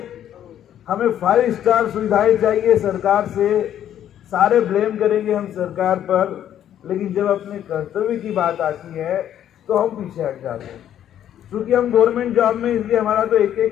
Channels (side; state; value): right; quieter; 10.7 dB